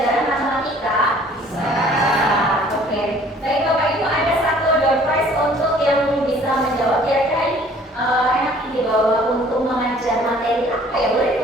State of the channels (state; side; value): normal; both; correlation 0.54